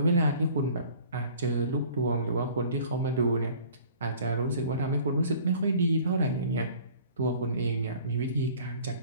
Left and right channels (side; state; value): both; inverted; correlation -0.49